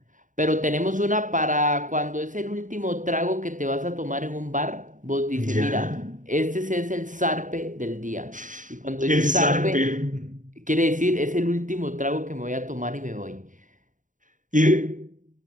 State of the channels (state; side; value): late; left; 0.37 ms